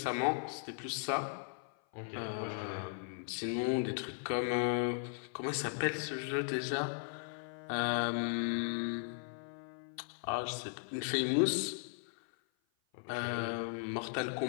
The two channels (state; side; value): silent; right; 53 dB below the other